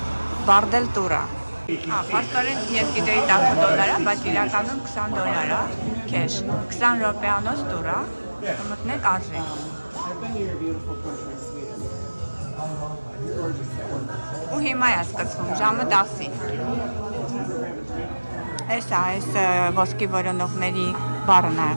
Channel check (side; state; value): both; inverted; correlation -1.00